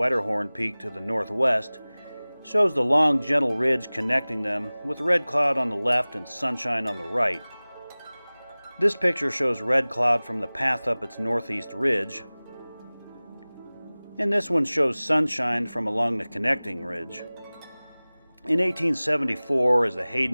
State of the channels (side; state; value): both; inverted; correlation -0.99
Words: Peak to the northwest, shows the long, gentle ridge connecting them, with Redcloud on the left and Sunshine on the right. This picture shows Redcloud from the path up its northeast ridge, and this one shows Sunshine from along the connecting ridge. In 1874, as the